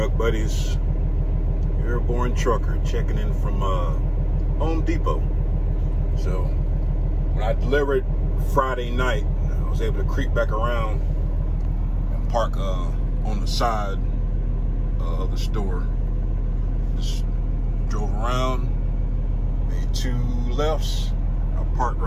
buddies. Airborne trucker checking in from Home Depot. So when I delivered Friday night, I was able to creep back around and park on the side of the store. Just drove around, made 2 lefts. I parked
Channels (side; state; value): both; identical; correlation 1.00